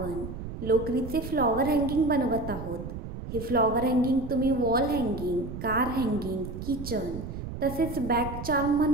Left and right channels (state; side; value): noise; right; rumble, 8 dB below the sound